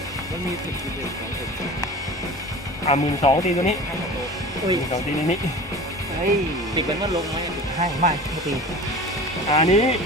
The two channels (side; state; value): both; normal; correlation 0.37